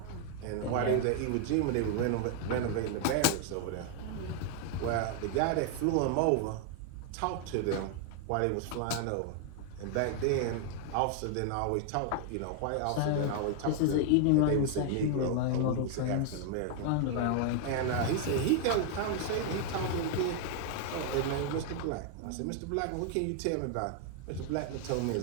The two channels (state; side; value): different; both; correlation 0.00